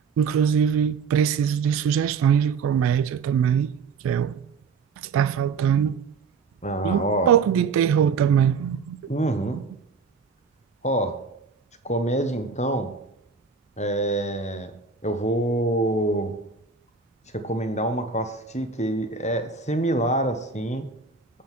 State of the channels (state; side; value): quieter; left; 5.2 dB